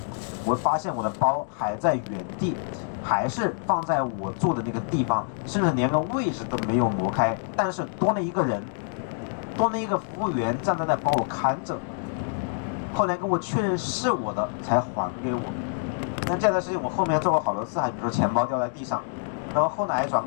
我会发现我的包还在原地，还是放在我住的那个地方，甚至连个位置都没有挪开，但是多了一个人，多了一个服务员站在那帮我看着。后来跟我确认是我的，才还给我。那这样的事情我后面做过好多次，还比如说钱包掉在地上，然后后来转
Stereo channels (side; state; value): right; silent; 61 dB below the other